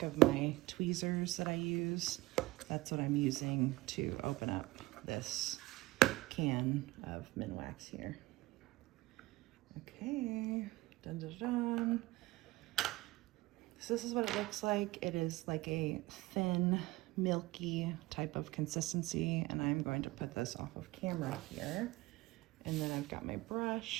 of my tweezers that I use. That's what I'm using to open up this can of Minwax here. Okay, dun dun dun. So this is what it looks like. It is like a thin, milky type of consistency, and I'm going to put this off of camera here. And then I've got my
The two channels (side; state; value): left; quieter; 19.4 dB